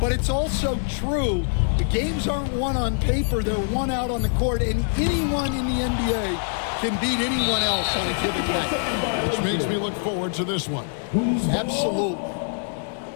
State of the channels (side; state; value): right; silent; 63 dB below the other